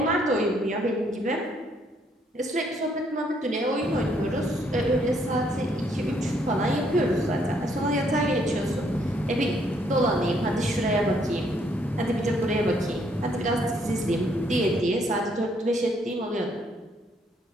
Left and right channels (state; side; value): normal; both; correlation 0.69